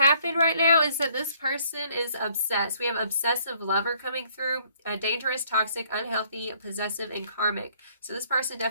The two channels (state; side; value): inverted; both; correlation -0.62